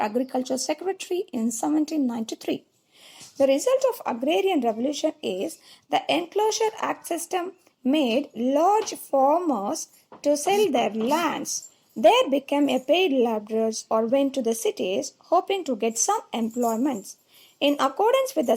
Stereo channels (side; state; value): both; identical; correlation 1.00